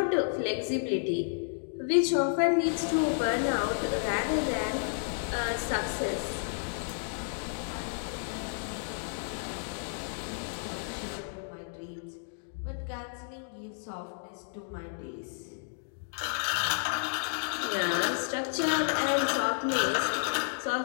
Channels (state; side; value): silent; right; digital silence